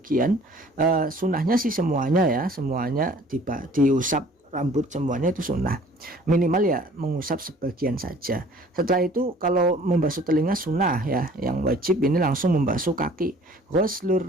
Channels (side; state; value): both; normal; correlation 0.52